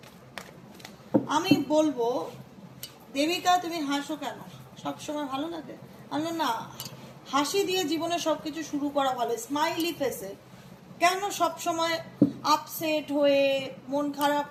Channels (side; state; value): both; identical; correlation 1.00